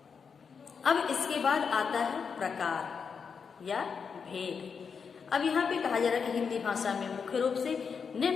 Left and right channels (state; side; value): quieter; right; 6.0 dB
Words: अब इसके बाद आता है प्रकार या भेद। अब यहाँ पे कहा जा रहा है कि हिंदी भाषा में मुख्य रूप से